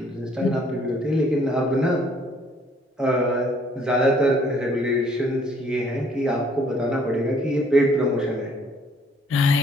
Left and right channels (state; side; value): normal; both; correlation 0.62